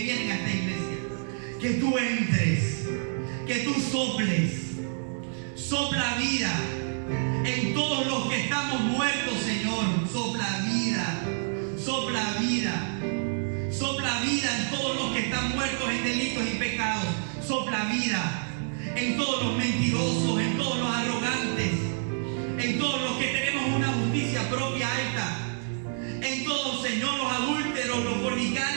a esta iglesia, que tú entres, que tú sopla vida en todos los que estamos muertos, Señor. Sopla vida en todos los que están muertos en delitos y pecados. Sopla vida en todos los mentirosos, en todos los arrogantes, en todos los que tenemos una justicia propia alta, en todos, Señor, los adúlteros, los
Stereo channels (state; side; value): silent; left; digital silence